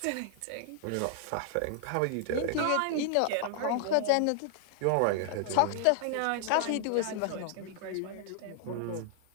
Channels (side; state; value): both; different; correlation -0.01